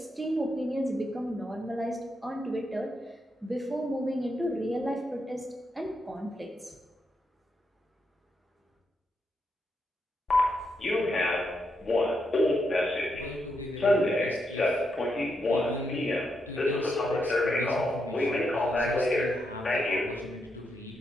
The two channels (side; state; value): both; normal; correlation 0.82